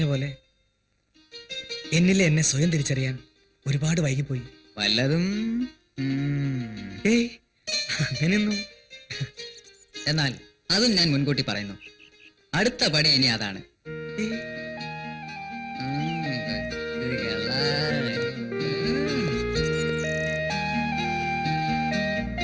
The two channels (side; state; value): both; identical; correlation 1.00